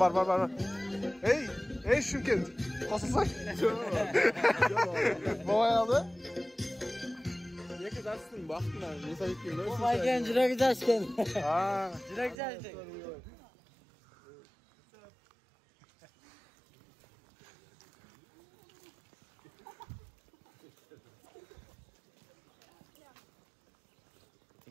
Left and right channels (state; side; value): drops out; left; at 12.4 s